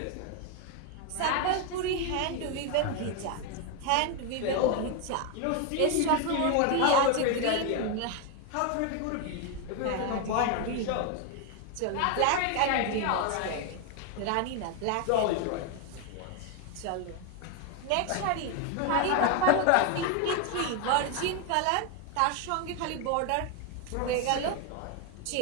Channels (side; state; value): both; different; correlation 0.01